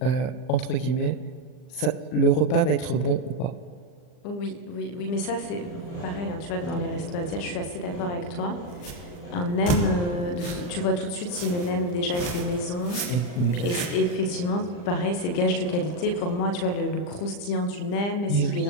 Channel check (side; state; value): right; late; 40 ms